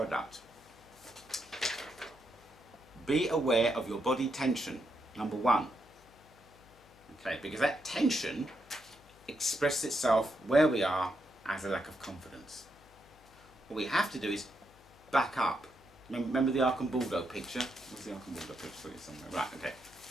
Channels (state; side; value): noise; left; hum, 26 dB below the sound